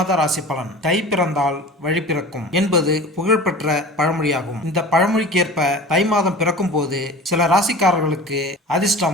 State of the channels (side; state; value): both; normal; correlation 0.37